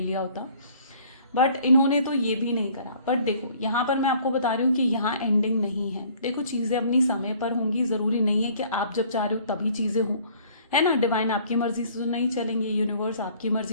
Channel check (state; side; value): inverted; both; correlation -0.55